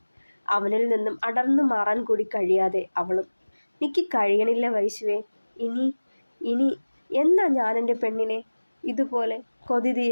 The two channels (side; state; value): both; inverted; correlation -1.00